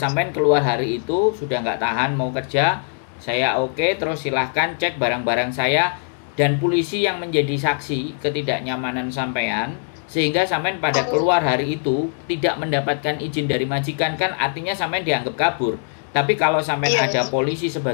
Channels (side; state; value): right; silent; digital silence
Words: keluar hari itu sudah nggak tahan mau kerja. Saya oke, terus silahkan cek barang-barang saya dan polisi yang menjadi saksi ketidaknyamanan sampean. Sehingga sampean pada keluar hari itu tidak mendapatkan izin dari majikan kan artinya sampean dianggap kabur. Tapi kalau sampean ada polisi